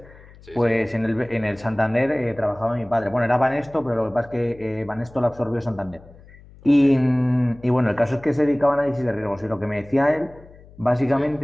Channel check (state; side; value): noise; left; hum, 23 dB below the sound